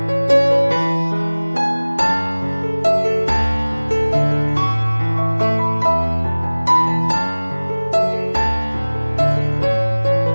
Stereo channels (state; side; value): inverted; both; correlation -1.00